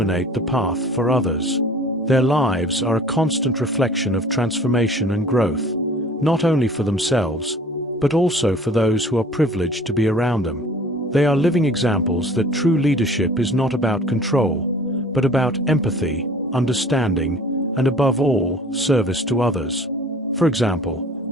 the path for others. Their lives are a constant reflection of transformation and growth, not only for themselves, but also for those who are privileged to be around them. They are living examples that true leadership is not about control, but about empathy, understanding, and above all, service to others. For example,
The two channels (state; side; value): normal; both; correlation 0.48